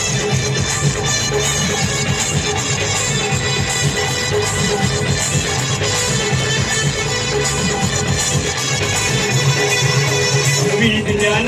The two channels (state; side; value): identical; both; correlation 1.00